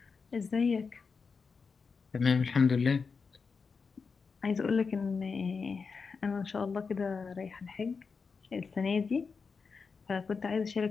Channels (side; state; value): right; quieter; 5.1 dB